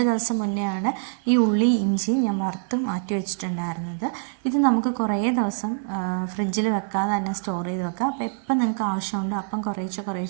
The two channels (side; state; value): left; silent; digital silence